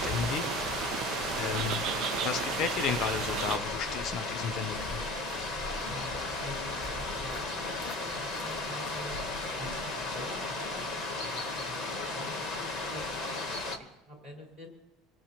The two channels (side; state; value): both; normal; correlation 0.38